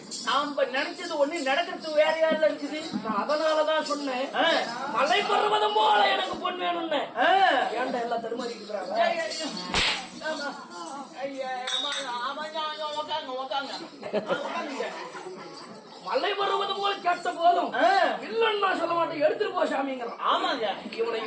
நாம நினைச்சது ஒண்ணு நடக்கிறது வேற யாருல இருக்குது. அதனாலதான் சொன்னேன் மலை பருவதம் போல எனக்கு பொண்ணு வேணும்னு. ஏன்டா எல்லாம் தருமாறிக்கிறாங்க. மலை பருவதம் போல கேட்ட போதும் இல்லன்னு நான் சொல்ல மாட்டேன். எடுத்துட்டு போ சாமிங்கிறான். ஆமாங்க, இவனை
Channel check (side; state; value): both; identical; correlation 1.00